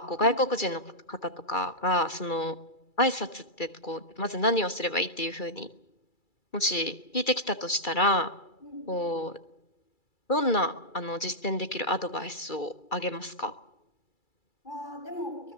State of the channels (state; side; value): late; right; 2.3 ms